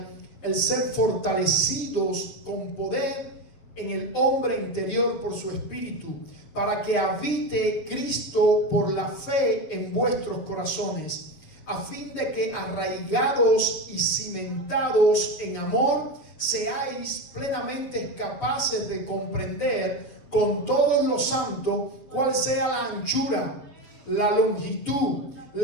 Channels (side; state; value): right; late; 6.9 ms